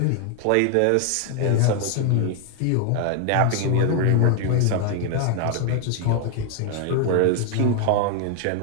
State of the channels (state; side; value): different; both; correlation 0.00